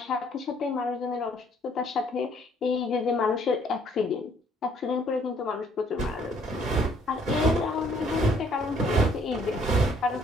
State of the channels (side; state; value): both; normal; correlation 0.63